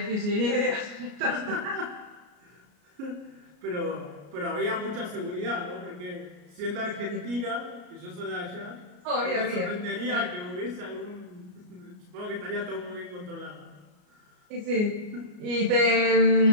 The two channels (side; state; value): left; late; 33 ms